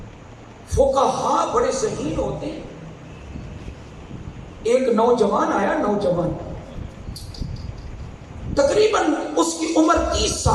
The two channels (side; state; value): both; identical; correlation 1.00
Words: فقہاء بڑے ذہین ہوتے ہیں۔ ایک نوجوان آیا، نوجوان تقریباً اس کی عمر 30